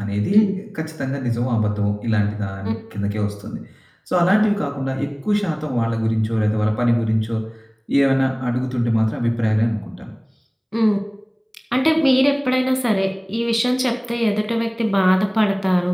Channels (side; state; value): both; identical; correlation 1.00